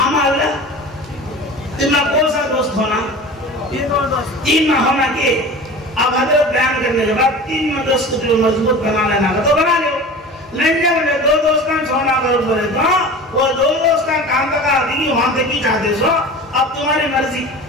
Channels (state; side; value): normal; both; correlation 0.36